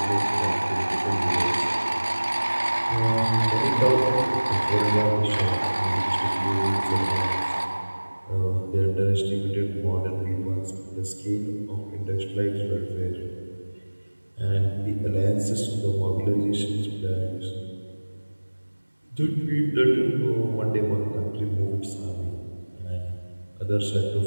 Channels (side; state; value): both; inverted; correlation -1.00